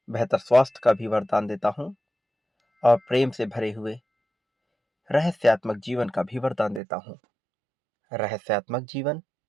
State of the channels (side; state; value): left; drops out; at 6.8 s